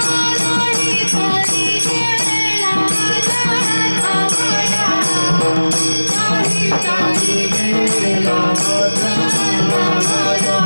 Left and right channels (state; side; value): inverted; both; correlation -1.00